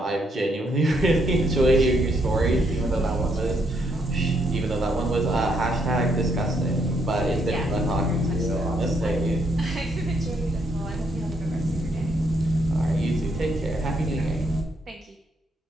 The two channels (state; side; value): normal; both; correlation 0.74